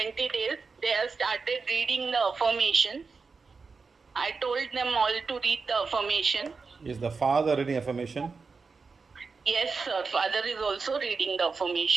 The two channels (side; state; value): left; quieter; 4.7 dB